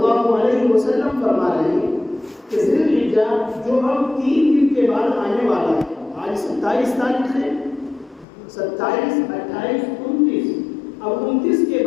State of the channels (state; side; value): drops out; right; at 8.2 s